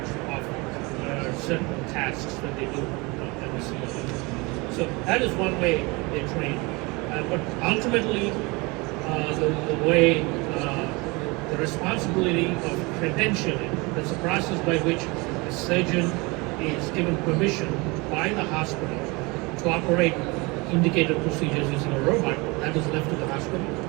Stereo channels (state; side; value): quieter; left; 26.0 dB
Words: of certain tasks that they do in the simulator. So that is one way they train. But ultimately, the way, the responsibility of credentialing, that's a process by which a surgeon is given permission by the hospital to operate indicated procedures using a robot, that is left to the hospital.